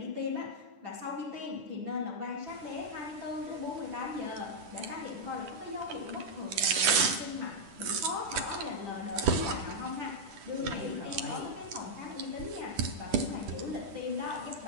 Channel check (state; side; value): late; left; 10 ms